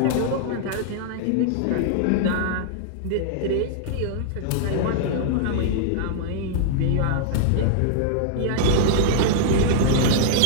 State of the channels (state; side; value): different; both; correlation -0.01